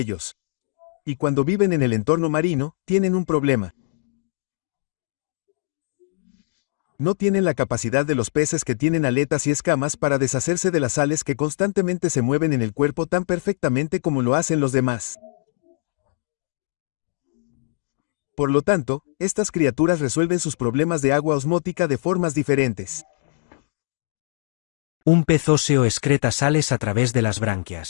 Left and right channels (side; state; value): right; silent; digital silence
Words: Y cuando viven en el entorno marino, tienen un problema. No tienen la capacidad de los peces que tienen aletas y escamas para deshacerse de las sales que constantemente se mueven en el cuerpo tan perfectamente como lo hacen los demás. Por lo tanto, estas criaturas resuelven sus problemas de agua osmótica de formas diferentes. Un pez óseo excreta sales a través de las